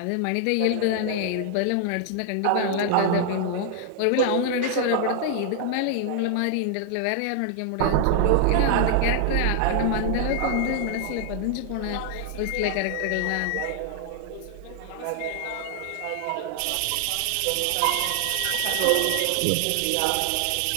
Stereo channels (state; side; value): different; both; correlation 0.00